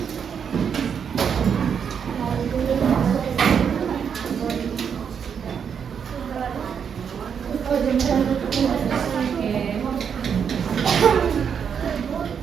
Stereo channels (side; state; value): left; quieter; 7.3 dB